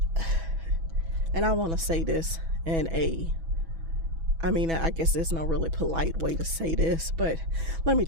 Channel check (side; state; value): left; late; 6.1 ms